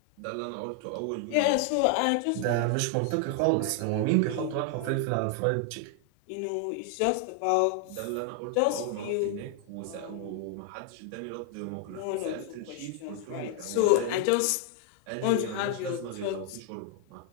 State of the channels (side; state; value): both; different; correlation 0.00